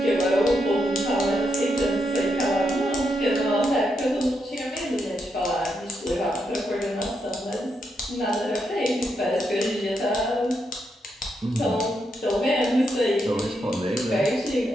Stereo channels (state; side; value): normal; both; correlation 0.81